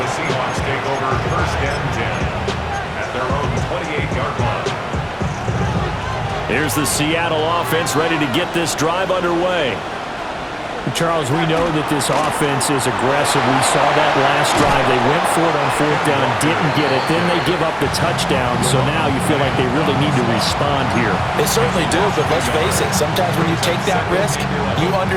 Seahawks take over 1st and 10 at their own 28-yard line. Here's the Seattle offense ready to get this drive underway. Charles, we know that this offense is aggressive. We saw that last drive. They went for it on 4th down, didn't get it. Then they give up the touchdown. So now you feel like they really need to respond here. They certainly do, but let's face it. Sometimes when you take that risk, you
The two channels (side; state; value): both; identical; correlation 1.00